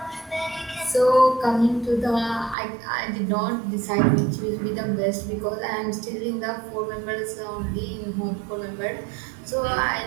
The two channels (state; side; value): drops out; left; at 2.6 s